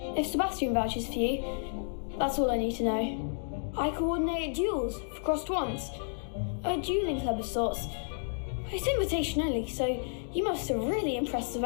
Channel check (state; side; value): silent; right; digital silence